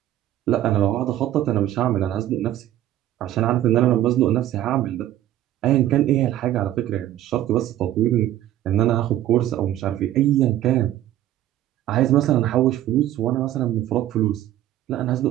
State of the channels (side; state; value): left; quieter; 13.1 dB